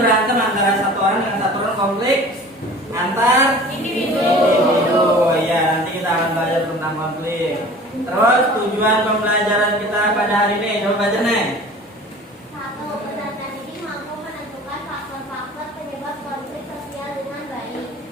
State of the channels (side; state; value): both; normal; correlation 0.43